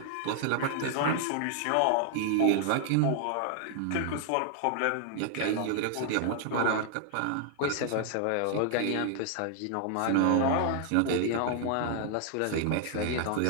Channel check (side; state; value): both; different; correlation 0.00